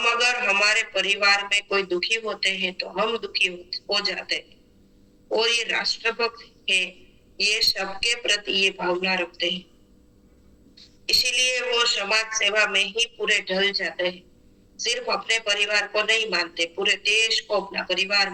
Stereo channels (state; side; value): identical; both; correlation 1.00